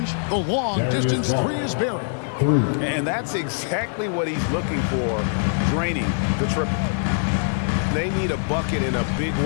the long distance three is buried. And that's exactly what he's looking for, draining the triple. They need a bucket in a big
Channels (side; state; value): right; silent; 63 dB below the other